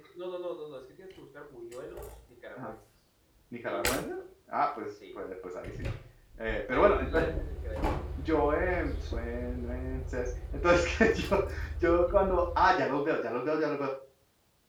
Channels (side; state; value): both; identical; correlation 1.00